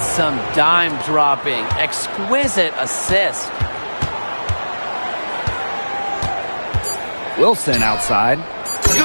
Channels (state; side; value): inverted; both; correlation -1.00